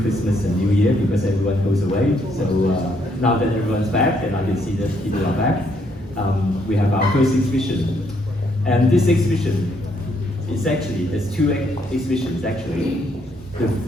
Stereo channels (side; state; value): both; normal; correlation 0.72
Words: Christmas and New Year because everyone goes away. So now that everyone's back and I can see that people are back, we have our first exhibition. And this exhibition is actually, there's two exhibitions actually.